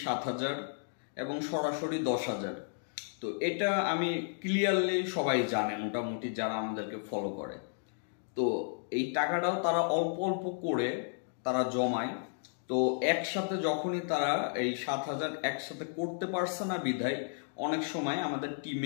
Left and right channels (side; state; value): right; silent; digital silence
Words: 7,000 এবং সরাসরি 10,000, তো এটা আমি ক্লিয়ারলি সবাই জানে মোটামুটি যারা আমাদেরকে ফলো করে। তো এই টাকাটাও তারা অল্প অল্প করে তারা জমায়। তো একসাথে যখনই তারা এই 7,000 একসাথে করতে পারছে না বিধায় অনেক সময় আমাদের